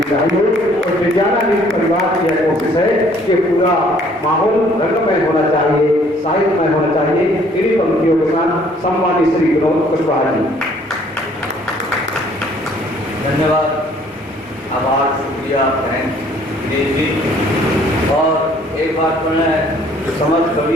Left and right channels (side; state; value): both; normal; correlation 0.60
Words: चाहिए। और विज्ञाना परिवार की यह कोशिश है कि पूरा माहौल रंगमय होना चाहिए, साहित्यमय होना चाहिए। इन्हीं पंक्तियों के साथ सम्मानित श्री विनोद कुशवाहा जी। धन्यवाद, आभार, शुक्रिया, थैंक जी। और एक बात मैं समस्त